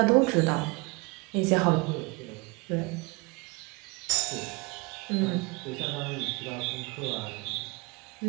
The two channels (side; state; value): left; quieter; 26.8 dB